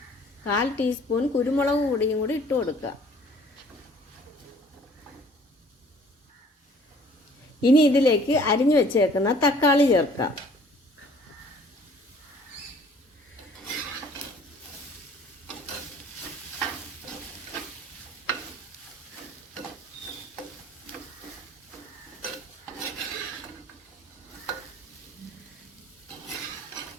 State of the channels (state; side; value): normal; both; correlation 0.54